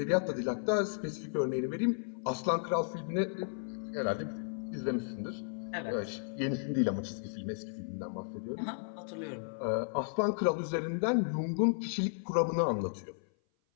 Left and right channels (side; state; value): right; silent; 55 dB below the other